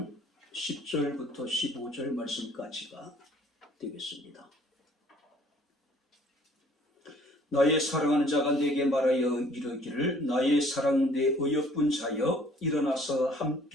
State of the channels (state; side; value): normal; both; correlation 0.57